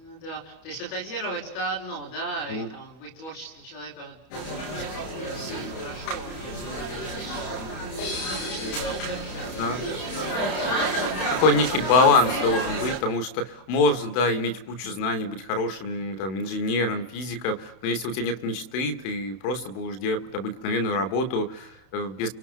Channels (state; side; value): late; right; 31 ms